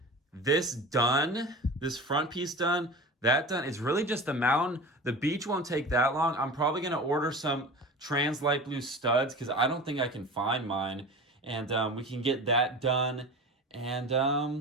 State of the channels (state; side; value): normal; both; correlation 0.33